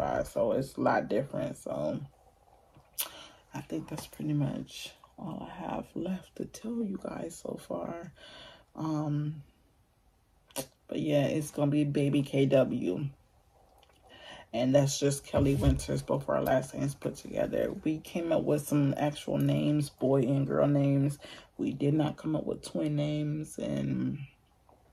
So it's a lot different. So I think that's pretty much all I have left to tell you guys so far. But yeah, it's gonna be baby KW. And that's just Kelly Winters, both our last names put together. We came up with some actual names, boy and girl names. We did not come up with twin names, and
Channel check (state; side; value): identical; both; correlation 1.00